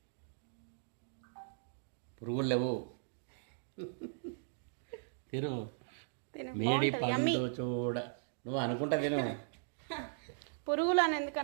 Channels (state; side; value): silent; left; digital silence